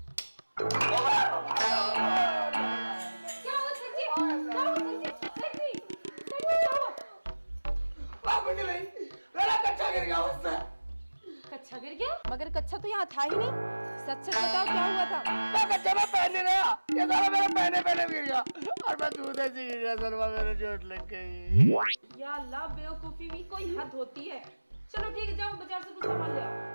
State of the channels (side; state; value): both; inverted; correlation -1.00